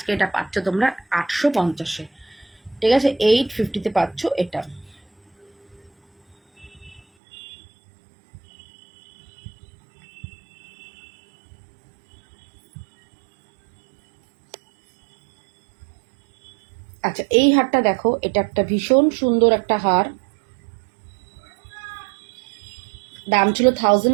এটা পাচ্ছ তোমরা 850-এ। ঠিক আছে, 850-তে পাচ্ছ এটা। আচ্ছা, এই হারটা দেখো, এটা একটা ভীষণ সুন্দর একটা হার, দাম ছিল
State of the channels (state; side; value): drops out; left; at 7.0 s